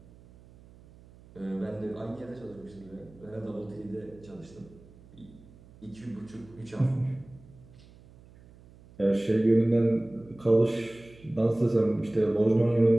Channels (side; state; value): right; noise; hum, 23 dB below the sound